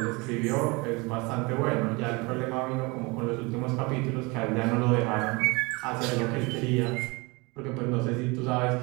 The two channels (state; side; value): quieter; left; 26.5 dB